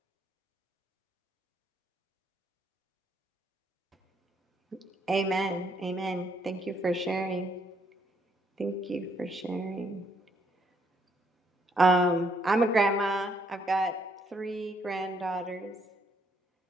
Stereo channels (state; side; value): normal; both; correlation 0.71